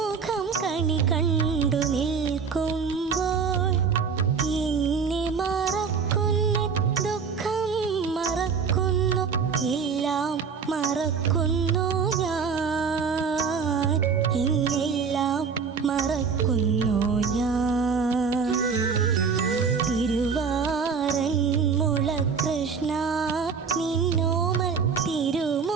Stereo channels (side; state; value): left; quieter; 5.8 dB